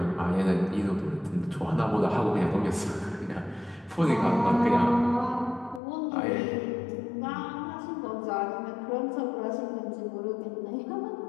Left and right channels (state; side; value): drops out; right; at 5.8 s